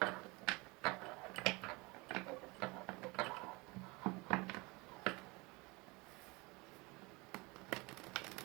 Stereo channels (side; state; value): left; quieter; 25.6 dB